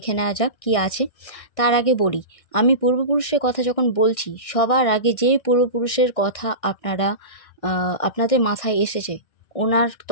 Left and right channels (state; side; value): late; right; 1.6 ms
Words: নেওয়া যাক কী আছে। তার আগে বলি, আমি পূর্বপুরুষের কথা যখন বলছি, সবার আগে যে পূর্বপুরুষের কথা আপনাদের মাথায় এসেছে, ওনার